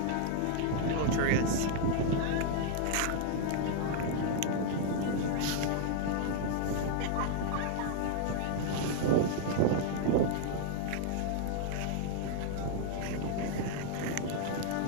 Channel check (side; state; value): both; different; correlation 0.00